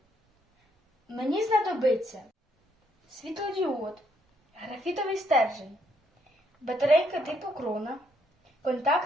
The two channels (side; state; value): both; normal; correlation 0.72